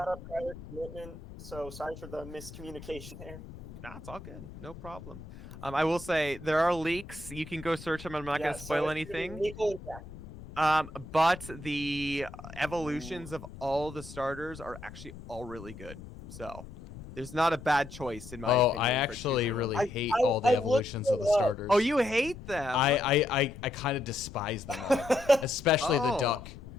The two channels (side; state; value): left; noise; rumble, 15 dB below the sound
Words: private commitment, so sorry for the miscommunication there. Nah, it's all good. No problem. I will say there are leaks. You can go search them. I'm not gonna spoil anything. Nico and Jack. But the evolutions of all the starters are actually all really good. So there's not a bad choice in my opinion. I for actually choosing really them. hate all the evolutions of the starters. Oh, you hate them? I kind of despise them all, especially the Oh. duck.